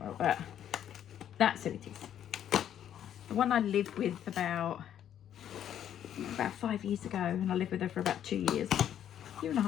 But that's who it is. The one I lived with about 5 years ago, and I lived with her for about 2 years.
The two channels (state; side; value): quieter; right; 10.2 dB